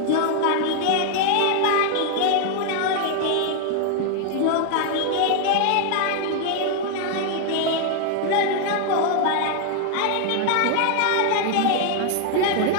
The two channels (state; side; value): different; both; correlation 0.00